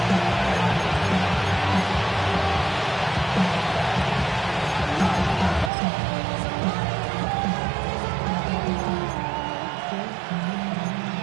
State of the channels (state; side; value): drops out; left; at 5.7 s